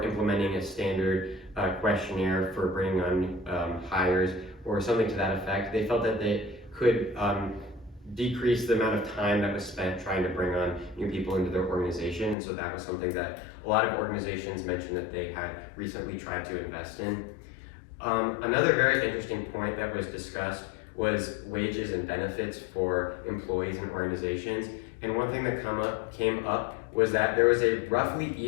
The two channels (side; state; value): right; drops out; at 12.4 s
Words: implementing a standard questionnaire for bringing on hires, or something to that effect, they felt that they could decrease the amount of time that was spent trying to bring on new people into their organization. And so that was something that a lot of organizations mentioned that they had recently tried to invest in. Another very interesting point that was discussed was wages and benefits for employees and organizations. And one thing that came up was that there was a roughly